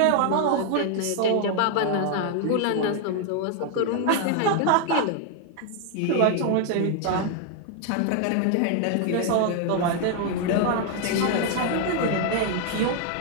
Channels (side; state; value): both; different; correlation 0.00